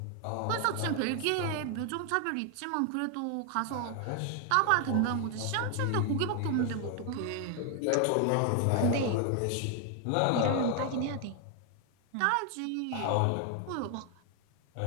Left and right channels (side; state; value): both; different; correlation 0.00